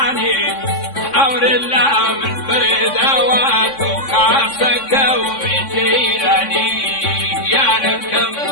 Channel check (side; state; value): right; late; 3.6 ms